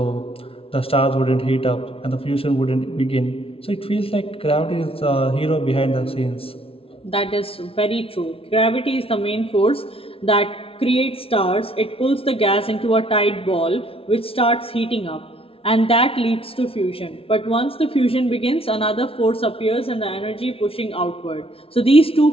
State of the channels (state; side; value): late; right; 0.27 ms